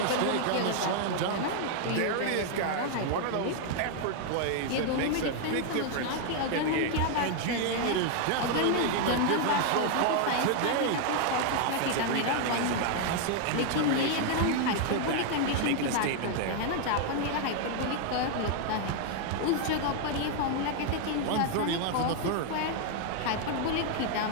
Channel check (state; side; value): different; both; correlation 0.00